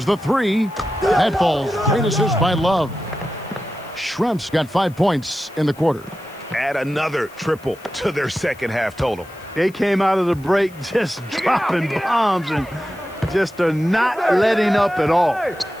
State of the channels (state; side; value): noise; left; hiss, 25 dB below the sound